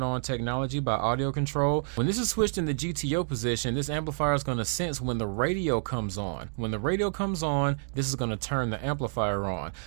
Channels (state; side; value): silent; left; digital silence